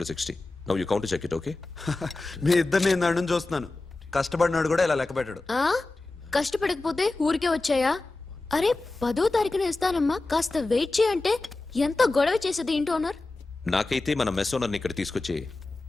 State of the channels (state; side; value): quieter; right; 3.2 dB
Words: to 60. Now you count to check it, okay? మీ ఇద్దరిని ఇందాక నుంచి చూస్తున్నాను. కష్టపడినాడు కూడా ఇలా లెక్క పెట్టాడు. కష్టపడకపోతే ఊరికే వచ్చాయా? అరే 10వ తారీఖున ఇస్తానమ్మా, కాస్త వెయిట్ చేయంటే ఎంత గొడవ చేసేది ఏంటి ఓనర్. నాకైతే మన మెస్ ఓనర్ని ఇక్కడ తీసుకొచ్చి